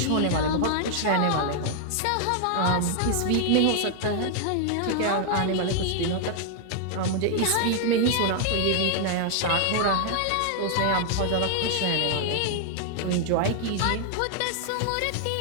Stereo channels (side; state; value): both; different; correlation 0.00